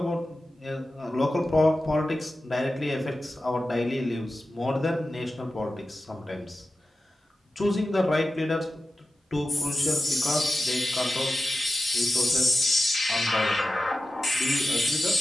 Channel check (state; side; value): normal; both; correlation 0.93